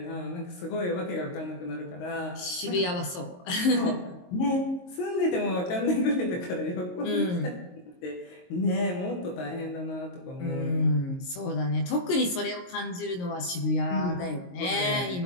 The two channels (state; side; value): late; right; 22 ms